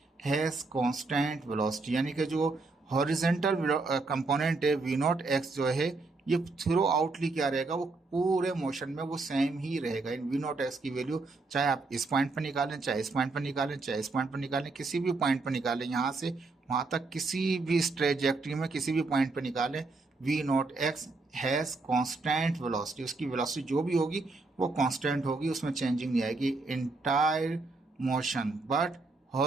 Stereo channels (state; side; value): quieter; left; 3.6 dB